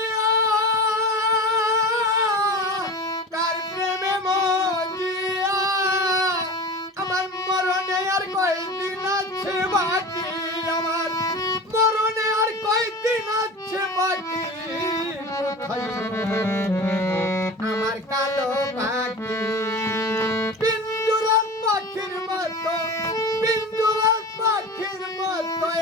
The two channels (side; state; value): both; normal; correlation 0.33